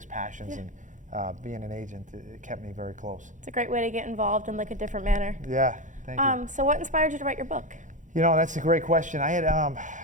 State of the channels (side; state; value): left; late; 0.36 ms